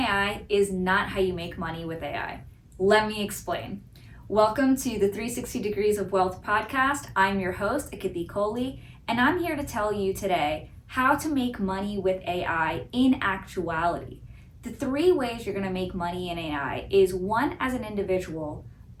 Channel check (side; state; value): both; identical; correlation 1.00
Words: is not how you make money with AI. Let me explain. Welcome to the 360 Degrees of Wealth podcast. I'm your host, Akiti, and I'm here to tell you today how to make money with AI in actuality. The three ways you're going to make money in AI is one, as an individual,